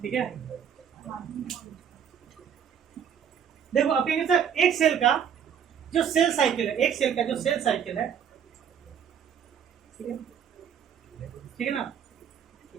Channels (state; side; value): quieter; left; 8.2 dB